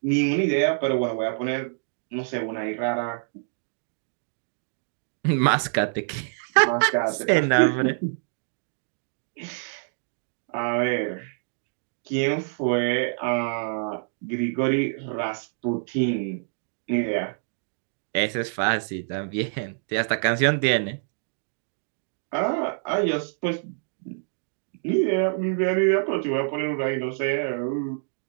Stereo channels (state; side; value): silent; left; digital silence